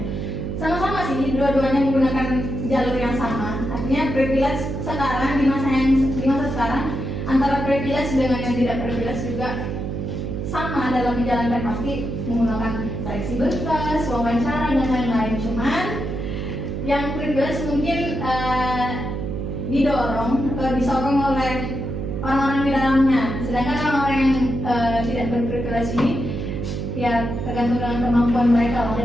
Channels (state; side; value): noise; right; hum, 4 dB below the sound